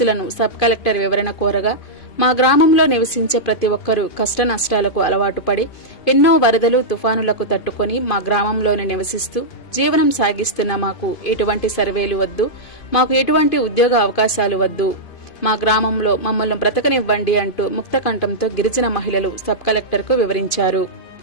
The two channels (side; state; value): right; late; 2.5 ms